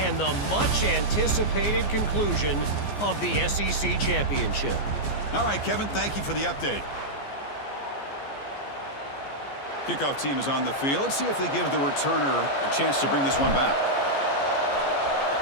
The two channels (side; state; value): right; late; 14 ms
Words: the much-anticipated conclusion of the SEC championship. All right, Kevin, thank you for the update. Kickoff team is on the field. Let's see if they give the returner a chance to bring this one back.